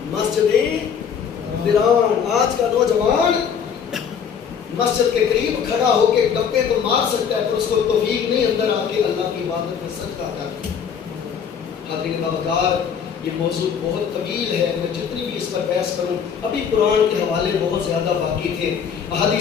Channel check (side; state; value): right; quieter; 7.3 dB